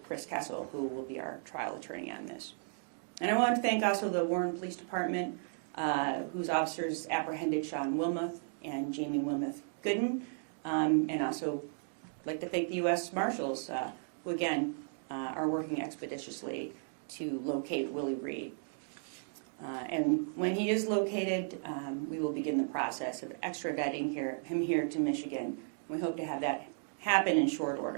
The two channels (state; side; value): silent; left; digital silence